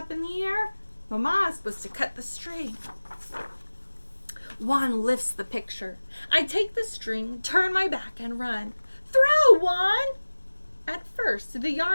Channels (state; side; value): inverted; both; correlation -1.00